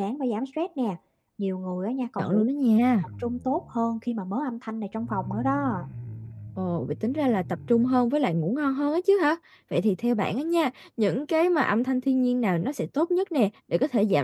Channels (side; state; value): both; identical; correlation 1.00